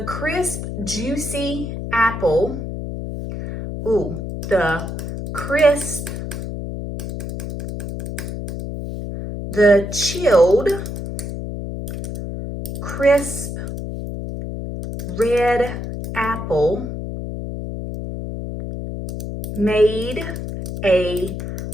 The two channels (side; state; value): left; noise; hum, 6 dB below the sound